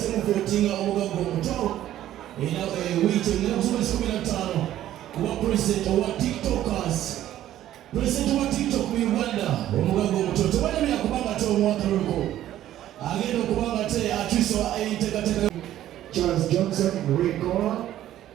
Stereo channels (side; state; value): left; quieter; 12.8 dB